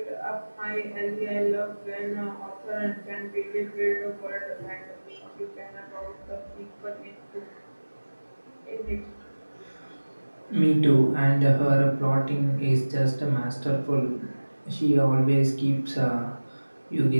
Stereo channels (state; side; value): inverted; both; correlation -1.00